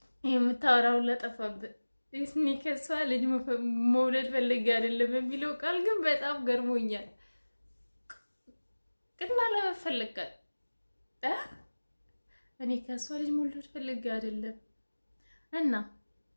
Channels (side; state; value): both; inverted; correlation -1.00